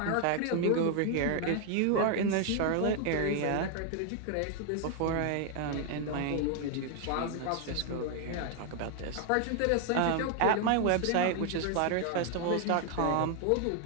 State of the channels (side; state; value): both; different; correlation 0.00